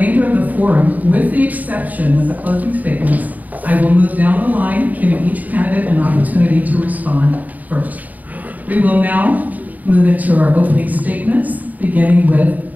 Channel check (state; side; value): late; left; 0.078 ms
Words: of the forum, with the exception of the closing statements, I will move down the line, giving each candidate an opportunity to respond first. We will now move into our opening statements, beginning with